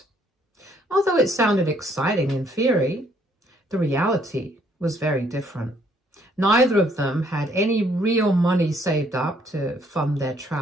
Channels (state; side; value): normal; both; correlation 0.66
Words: Although it sounded exciting in theory, the reality was very different. Neither of them had any real money saved up to fund their